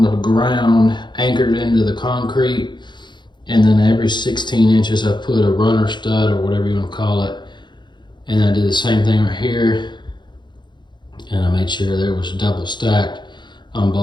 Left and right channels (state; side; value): late; right; 0.22 ms